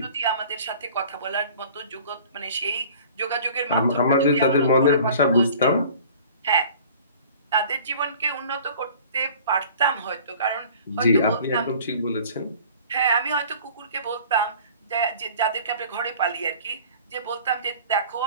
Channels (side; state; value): both; inverted; correlation -0.46